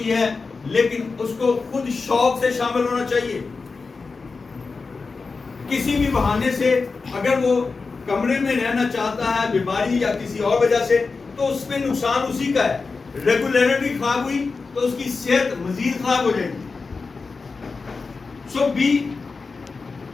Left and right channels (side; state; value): right; quieter; 4.4 dB